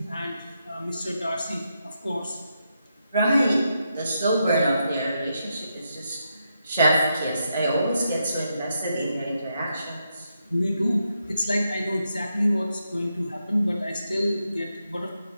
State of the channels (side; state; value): both; inverted; correlation -0.83